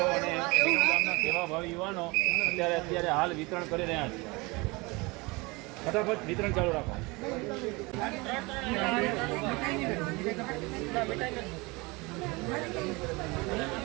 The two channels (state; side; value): quieter; left; 25.1 dB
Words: અને વિરમગામના સેવાભાવી યુવાનો અત્યારે હાલ વિતરણ કરી રહ્યા છે. ફટાફટ વિતરણ ચાલુ રાખો.